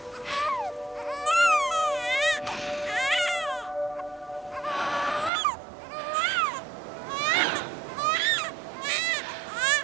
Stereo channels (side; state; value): left; drops out; at 5.3 s